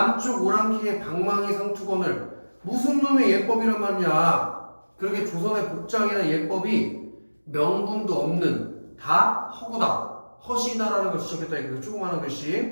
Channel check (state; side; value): inverted; both; correlation -1.00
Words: 오랑캐의 방망이 상투건을 무슨 놈의 예법이란 말이냐. 그러게 조선의 복장이나 예법이 명분도 없는 다 허구다. 허시다라는 걸 지적했다. 이거 조그마한